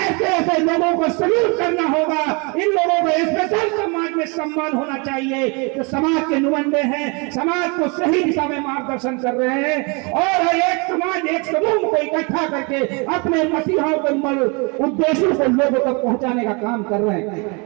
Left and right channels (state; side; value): quieter; left; 31.3 dB